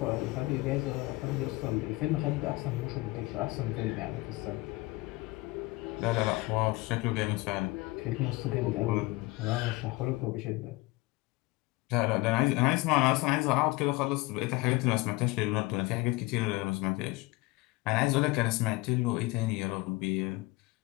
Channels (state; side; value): quieter; right; 21.9 dB